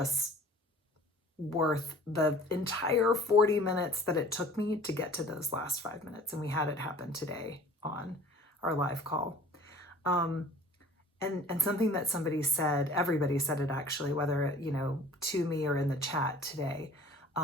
worth the entire 40 minutes that it took me to get to those last 5 minutes. And we had it happen today on our live call. And something that somebody said, everybody said it actually, whether, to me or in the chat today,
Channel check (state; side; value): normal; both; correlation 0.47